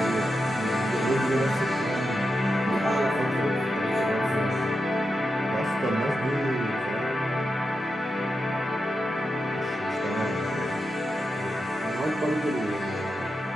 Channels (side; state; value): both; normal; correlation 0.88